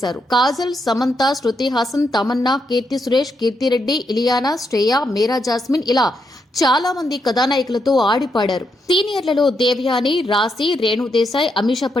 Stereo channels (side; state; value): both; normal; correlation 0.80